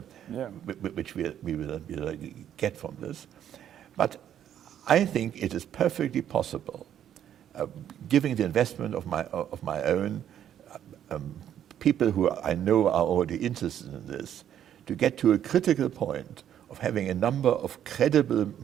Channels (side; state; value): left; quieter; 10.2 dB